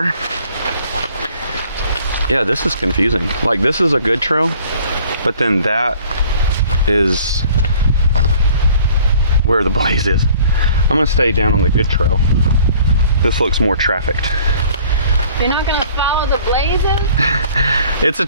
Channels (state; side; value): inverted; both; correlation -0.53